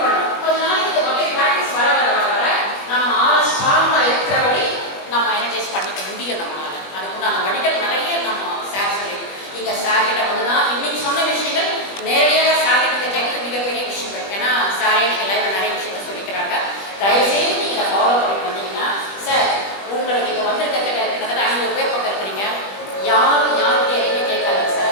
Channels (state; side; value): late; right; 20 ms